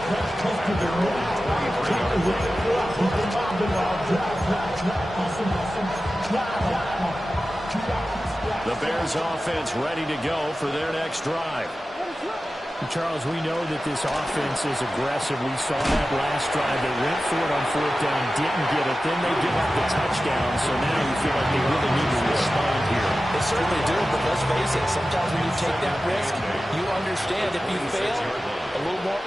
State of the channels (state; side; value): normal; both; correlation 0.94